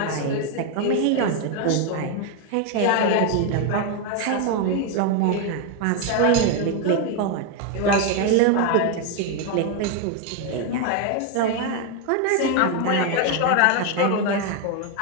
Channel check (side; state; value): both; different; correlation 0.01